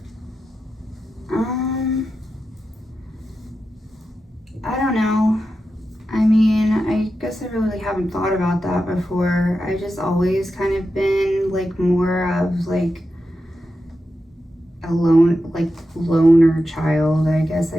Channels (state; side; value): normal; both; correlation 0.90